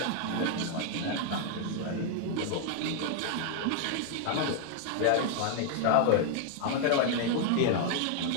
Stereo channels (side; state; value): both; different; correlation 0.00